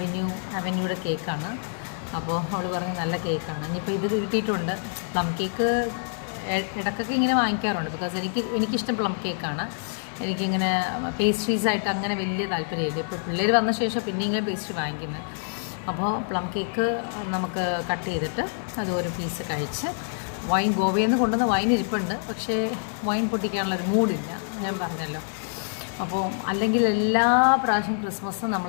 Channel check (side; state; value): right; silent; digital silence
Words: അവന്യൂയുടെ കേക്കാണ്. അപ്പോൾ അവൾ പറഞ്ഞ് നല്ല കേക്കാണ്. ഇനിയിപ്പോൾ ഇത് കിട്ടിയിട്ടുണ്ട്. പ്ലം കേക്ക് ഇടയ്ക്കൊക്കെ ഇങ്ങനെ വാങ്ങിക്കാറുണ്ട്. ബിക്കോസ് എനിക്കിഷ്ടം പ്ലം കേക്കാണ്. എനിക്കിങ്ങനെ പേസ്ട്രീസായിട്ട് അങ്ങനെ വലിയ താല്പര്യമില്ല. ഇപ്പോൾ പിള്ളേർ വന്ന ശേഷം പിന്നെ ഇങ്ങനെ പേസ്ട്രി വാങ്ങിക്കുന്നത്. അപ്പോൾ പ്ലം കേക്ക് നമുക്ക് കട്ട് ചെയ്തിട്ട് അത് ഒരു പീസ് കഴിച്ച്, വൈൻ ഗോവയിൽ നിന്ന് കൊണ്ടുവന്ന വൈൻ ഇരിപ്പുണ്ട്. പക്ഷേ വൈൻ പൊട്ടിക്കാനുള്ളൊരു മൂഡില്ല, ഞാൻ പറഞ്ഞല്ലോ. അപ്പോൾ അല്ലെങ്കിൽ എല്ലാ പ്രാവശ്യം ക്രിസ്മസ്